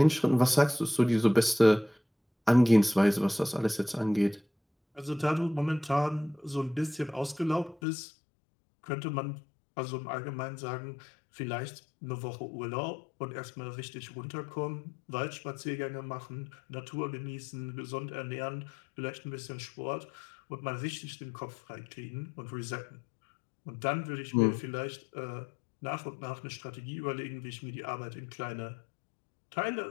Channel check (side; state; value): right; drops out; at 7.8 s